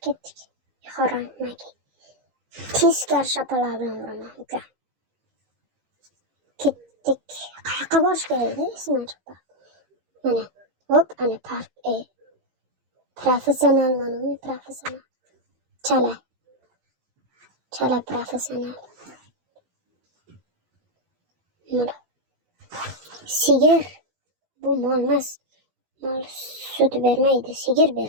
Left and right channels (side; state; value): left; late; 15 ms